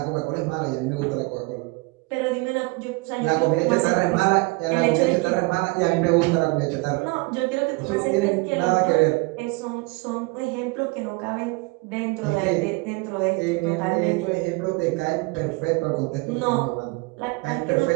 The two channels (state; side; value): quieter; left; 26.2 dB